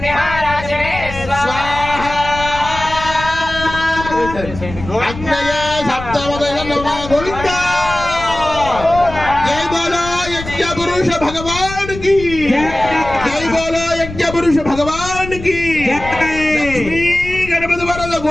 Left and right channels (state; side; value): noise; left; rumble, 11 dB below the sound